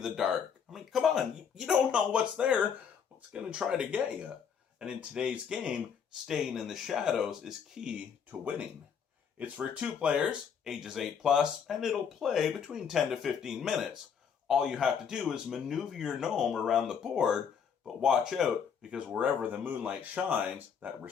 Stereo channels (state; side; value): quieter; right; 7.2 dB